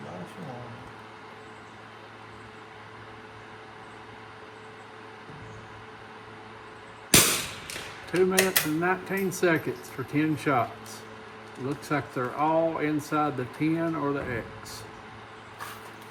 Nice one. Two minutes and 19 seconds for 10 shots. Looks like they're all inside the 10 or the X.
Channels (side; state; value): both; identical; correlation 1.00